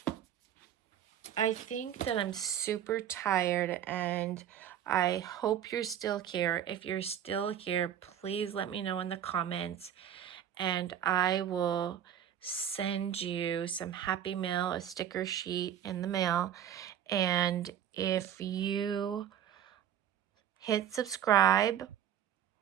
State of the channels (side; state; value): left; quieter; 10.0 dB